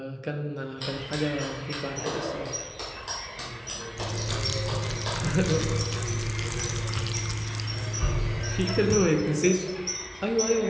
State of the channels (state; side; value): identical; both; correlation 1.00